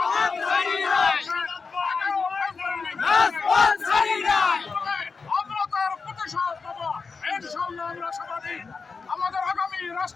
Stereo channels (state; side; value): quieter; right; 4.8 dB